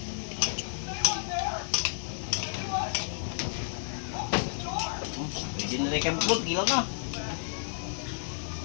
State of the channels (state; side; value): silent; right; digital silence